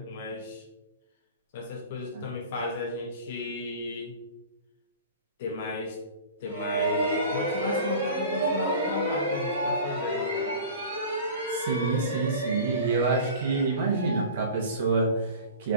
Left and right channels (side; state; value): both; inverted; correlation -0.38